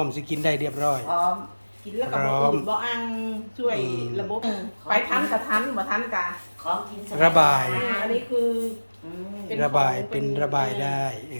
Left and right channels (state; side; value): inverted; both; correlation -1.00